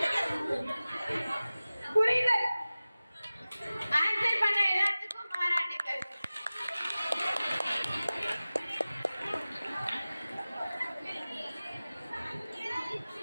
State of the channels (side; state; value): both; inverted; correlation -0.97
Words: புரிதல். ஆன்சர் பண்ண எல்லாத்துக்கும் பாராட்டுக்கள்.